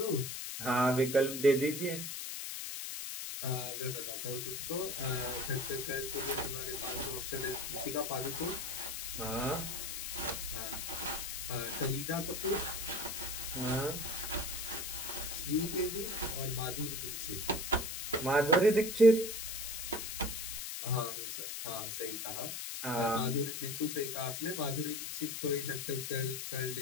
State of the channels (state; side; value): noise; left; hiss, 5 dB below the sound